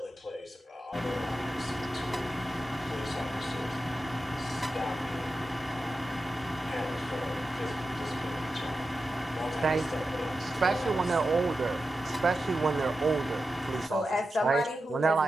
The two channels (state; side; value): normal; both; correlation 0.91